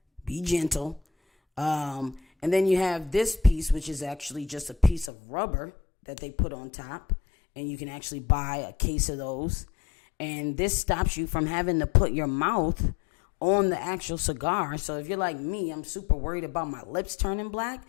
be gentle. And then you have this piece, which is actually just a piece of rubber that they put on top. And you can actually buy a case of those. And this stops you from having to put your mouth on the actual cigar. So if you're like me, I'm super worried about my lips turning black.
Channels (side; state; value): right; drops out; at 5.1 s